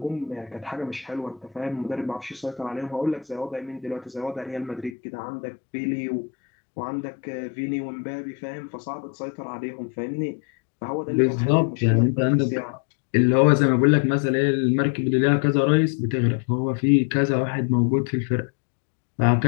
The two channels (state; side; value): drops out; right; at 5.0 s